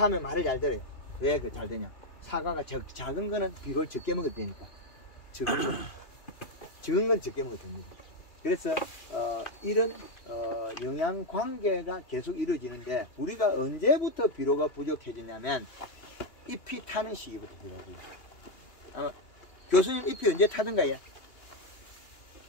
하면 말을 잘 들어요. 왜 그 잘 되냐? 사과가 작은 거는 비료를 적게 먹어도 되니까. 적은 건 적게 먹어도 됩니다. 그래서 이런 영양 관계가 계속 이루어지는데 우리가 언제부터 비료가 부족해지냐면 잎이 타는 시기부터 비료가 부족해요. 교수님 잎이 언제 타던가요?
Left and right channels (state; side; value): late; right; 2.8 ms